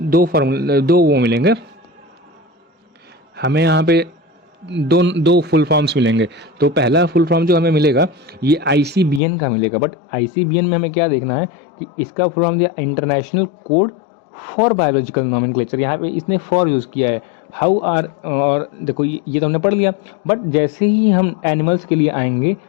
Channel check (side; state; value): right; drops out; at 9.2 s